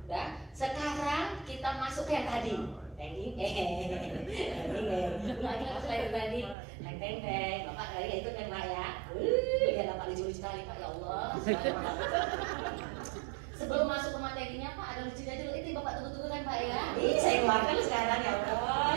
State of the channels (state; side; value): drops out; left; at 6.6 s